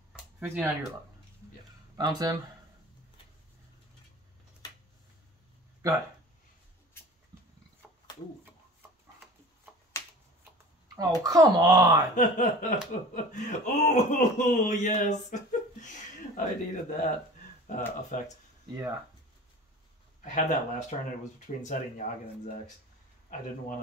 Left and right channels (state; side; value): normal; both; correlation 0.40